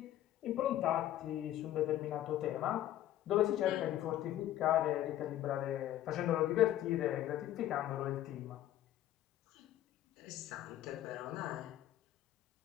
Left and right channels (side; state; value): right; quieter; 12.9 dB